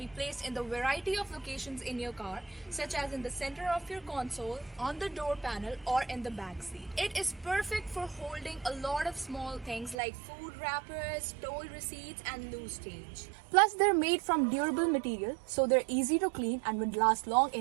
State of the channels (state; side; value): drops out; left; at 10.0 s